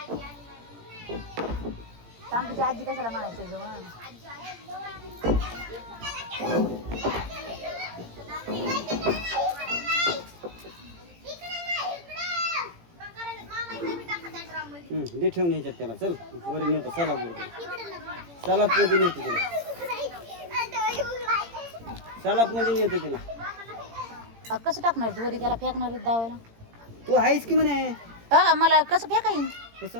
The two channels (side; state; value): left; late; 17 ms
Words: तांबीची आजी कशाला म्हणायचं ग मग दे ठेवून ह्याच्यात त्याला चल वरी नेतो सलाप सलाप मध्ये नेतो तिला सलाप मध्ये नेतो तिला कसं टाकणार तू वरी त्याला फेकणार दावायला तू आहेस की म्हणे मला कसं फेका येईन कसं